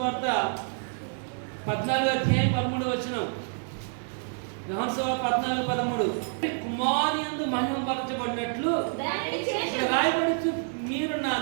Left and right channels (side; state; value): left; silent; 59 dB below the other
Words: 14వ అధ్యాయం 13వ వచనం. యోహాను సువార్త 14:13. కుమారుని యందు మహిమపరచబడినట్లు ఇక్కడ రాయబడుచు, మీరు నా